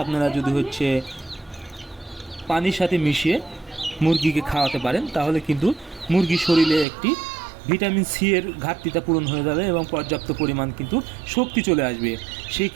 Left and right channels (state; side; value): drops out; left; at 6.9 s